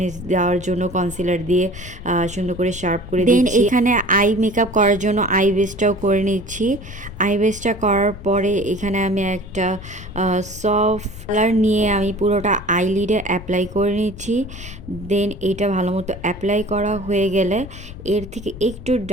দেওয়ার জন্য কনসিলার দিয়ে সুন্দর করে শার্প করে দিচ্ছি। দেন এখানে আই মেকআপ করার জন্য আই বেসটাও করে নিচ্ছি। আই বেসটা করার পরে এখানে আমি একটা সফট কালার নিয়ে আমি পুরোটা আইলিডে অ্যাপ্লাই করে নিচ্ছি। দেন এটা ভালো মতো অ্যাপ্লাই করা হয়ে গেলে এর থেকে একটু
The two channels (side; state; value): left; noise; rumble, 14 dB below the sound